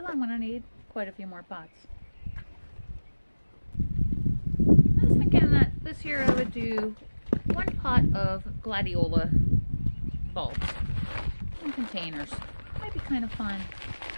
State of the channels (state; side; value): inverted; both; correlation -1.00